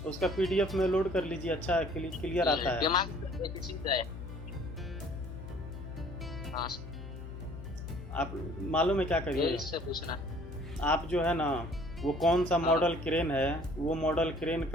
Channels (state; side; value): noise; left; hum, 11 dB below the sound